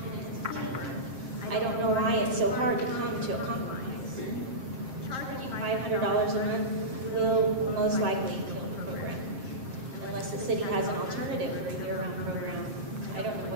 and teamwork. I don't know why it's so hard to come to a compromise. Charging $500 a month will most likely kill the program. Unless the city has an alternative for a year-round program, I don't know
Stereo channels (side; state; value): left; late; 7.5 ms